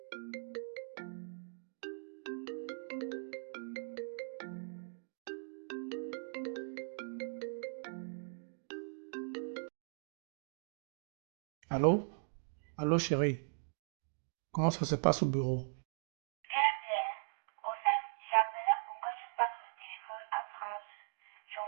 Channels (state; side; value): silent; left; digital silence